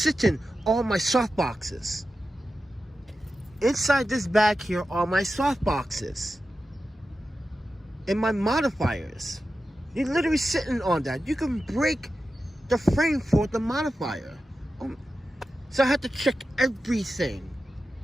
on my soft boxes. Inside this bag here are my soft boxes and my modifiers. You're literally sitting on that. You can break the frame for the modifier. So I had to check everything.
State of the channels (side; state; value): both; normal; correlation 0.92